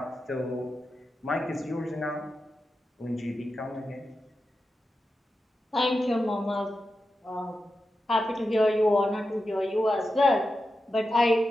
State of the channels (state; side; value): normal; both; correlation 0.90